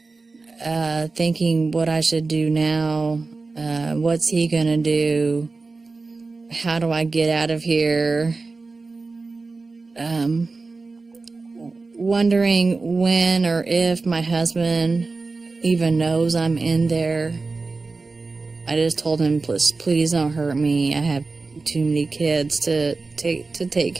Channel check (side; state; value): left; quieter; 3.8 dB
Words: thinking what I should do now. What's he gonna do? How do I get out of here? Wondering when or if my husband even knows I'm in there. I just told him, please don't hurt me. I have too many kids to take